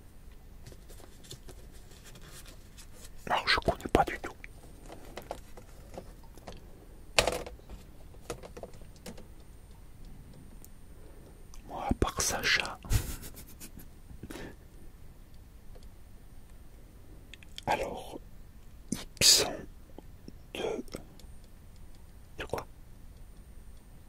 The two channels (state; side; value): identical; both; correlation 1.00